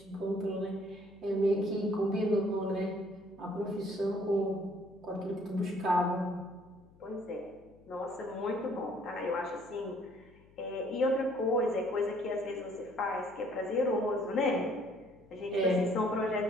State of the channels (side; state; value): left; noise; hum, 26 dB below the sound